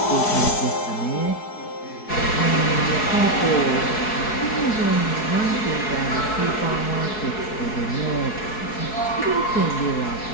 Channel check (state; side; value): late; right; 4.7 ms